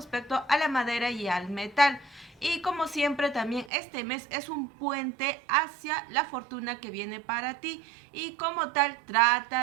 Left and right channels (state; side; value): drops out; left; at 3.7 s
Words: a la madera y al metal. Y como siempre también este mes es un puente hacia la fortuna que viene para ti, y como tal